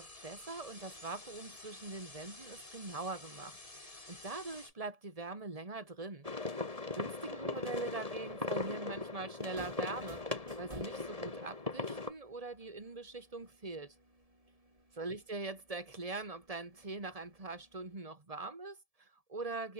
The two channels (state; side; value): late; left; 1.7 ms